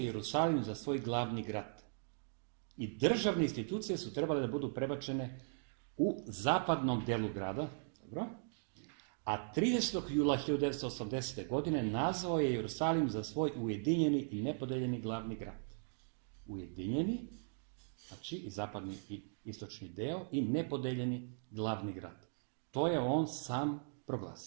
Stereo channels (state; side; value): silent; left; digital silence